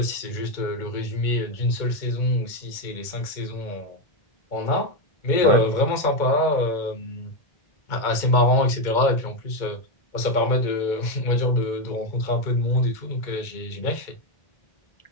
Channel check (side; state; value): right; late; 2.1 ms